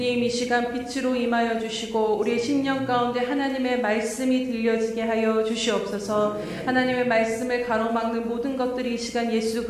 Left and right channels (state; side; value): identical; both; correlation 1.00